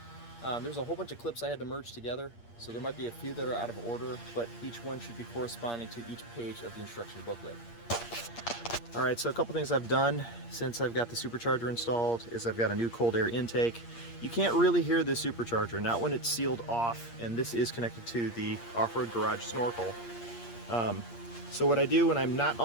There's a whole bunch of clips I had to merge together, so there might be a few that are out of order, but each one should be corresponding to each page of the instruction booklet. Alright, so a couple things I've done since I've got the supercharger installed is I've got a new cold air intake. You can't really hear the supercharger, not when it's sealed off, and this is connected to the off-road garage snorkel. So what I do when I'm not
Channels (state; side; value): late; right; 8.6 ms